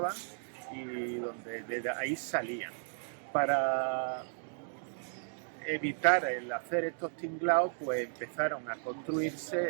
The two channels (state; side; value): silent; left; digital silence